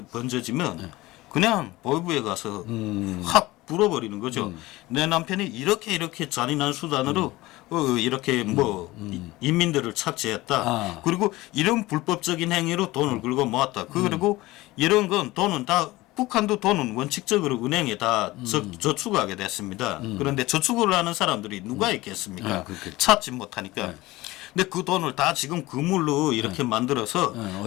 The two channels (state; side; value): quieter; right; 19.2 dB